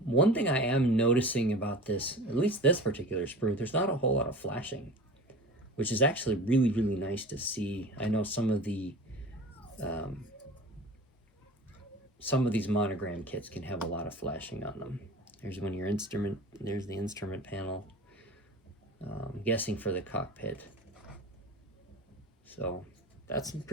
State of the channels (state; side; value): normal; both; correlation 0.37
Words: One thing I am noticing about this, at least this particular sprue, there's not a whole lot of flashing, which is actually really, really nice to see. I know some of these Monogram kits can have a lot of flashing on them. There's one of your instrument, there's the instrument panel. I'm guessing for the cockpit. So that's in